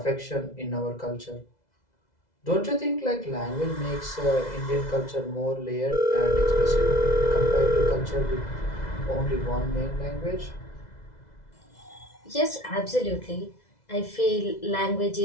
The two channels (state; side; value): late; right; 2.0 ms